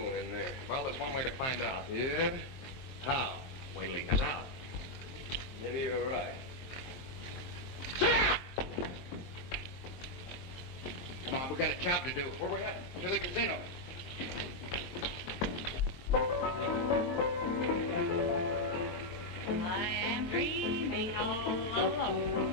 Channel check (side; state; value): right; late; 23 ms